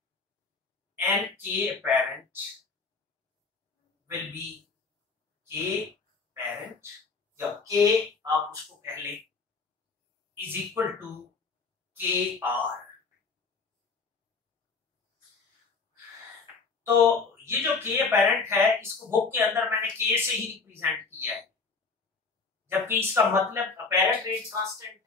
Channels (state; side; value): quieter; right; 4.5 dB